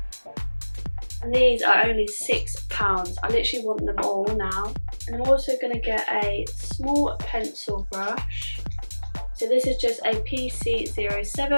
And these are only £6. I literally want them all now. And I'm also going to get a small pencil brush. So this is just a PC07,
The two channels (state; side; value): inverted; both; correlation -1.00